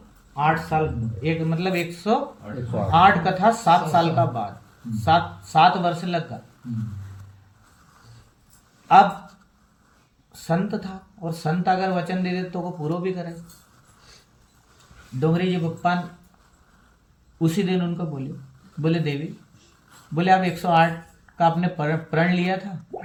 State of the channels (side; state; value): both; identical; correlation 1.00